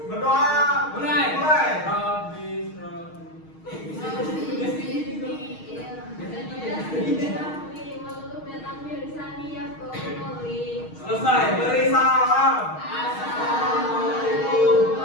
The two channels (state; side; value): late; right; 6.4 ms